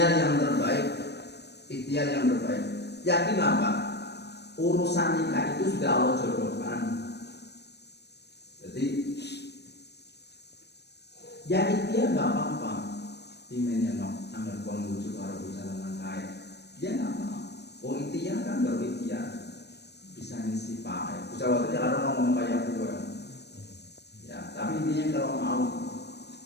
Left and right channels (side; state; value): right; late; 0.49 ms